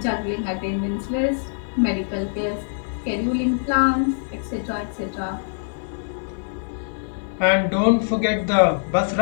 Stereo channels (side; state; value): right; silent; 63 dB below the other